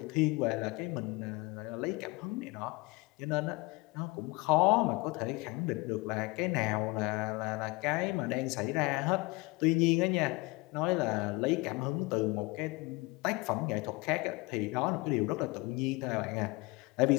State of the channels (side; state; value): right; quieter; 24.2 dB